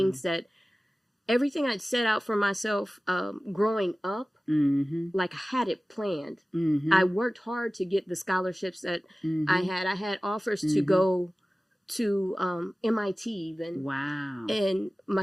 that everything I'd set out for myself growing up, like I had it planned. I worked hard to get the scholarships that I had. I had offers to go to MIT even. Wow. And my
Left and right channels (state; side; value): normal; both; correlation 0.97